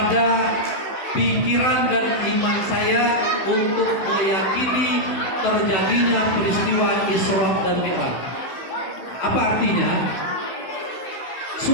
pikiran dan iman saya untuk meyakini terjadinya peristiwa Isra dan Mi'raj. Apa artinya?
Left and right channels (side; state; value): right; late; 16 ms